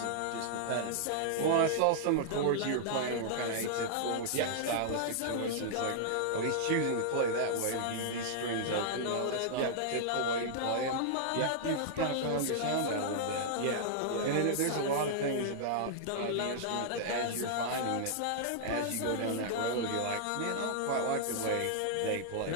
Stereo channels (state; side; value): different; both; correlation -0.01